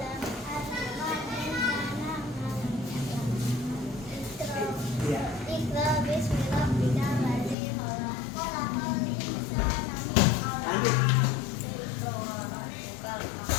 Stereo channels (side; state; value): right; drops out; at 7.6 s